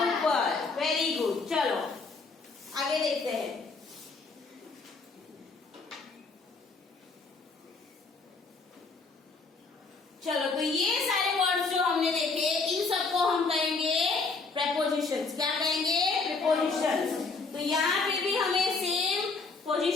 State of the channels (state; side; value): quieter; right; 4.2 dB